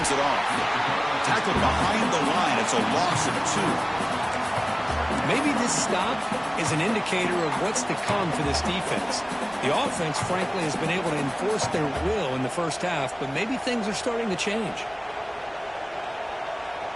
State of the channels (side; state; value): both; identical; correlation 1.00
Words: it off. Tackled behind the line. It's a loss of 2. Maybe this stop is an indicator of what's to come for this defense. The offense, frankly, has been able to enforce their will in the first half, but maybe things are starting to change.